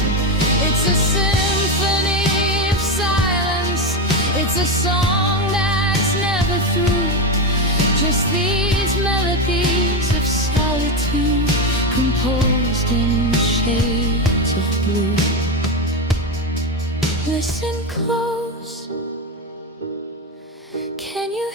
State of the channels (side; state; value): both; normal; correlation 0.13